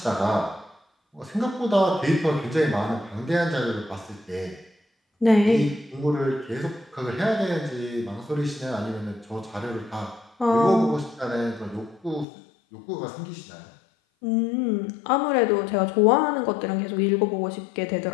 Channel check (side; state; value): right; drops out; at 12.2 s